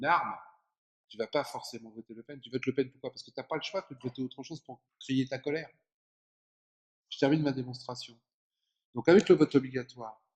arme, tu vas pas forcément voter Le Pen. Tu votes Le Pen pourquoi? Parce que tu n'as pas le choix de voter autre chose pour crier ta colère. Je termine ma démonstration. Donc avec le vote obligatoire,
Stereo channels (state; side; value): identical; both; correlation 1.00